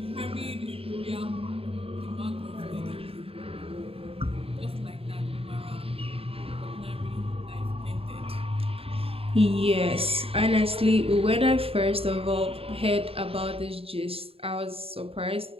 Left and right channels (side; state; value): left; late; 0.27 ms